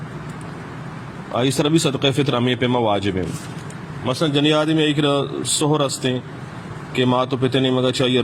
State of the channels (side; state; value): both; identical; correlation 1.00